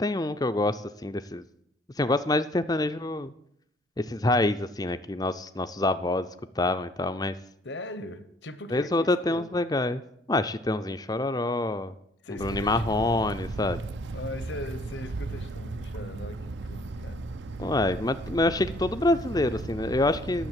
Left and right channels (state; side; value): normal; both; correlation 0.59